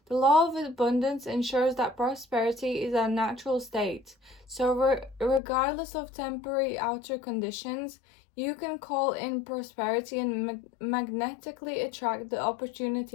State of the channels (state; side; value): drops out; right; at 5.4 s